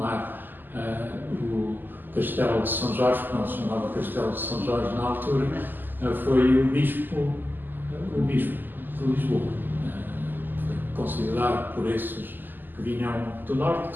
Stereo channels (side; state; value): left; late; 0.090 ms